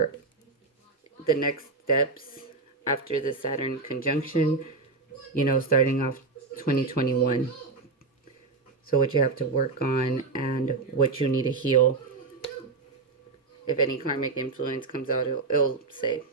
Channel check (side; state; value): left; quieter; 4.0 dB